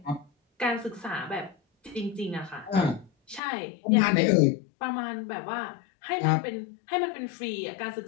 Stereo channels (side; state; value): right; drops out; at 3.4 s